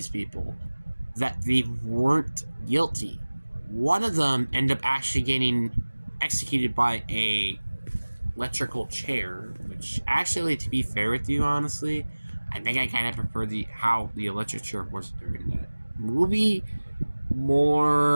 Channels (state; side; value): inverted; both; correlation -1.00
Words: people that they weren't guilty. One of them ended up actually getting executed by a electrical chair, which actually, to be fair with you, honestly, I think I kind of prefer how the electric chair was during that movie